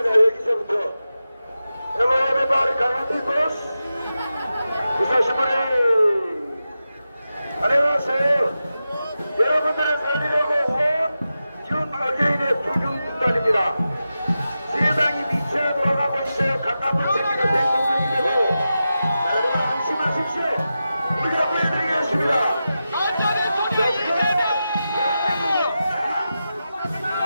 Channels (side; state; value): both; inverted; correlation -0.91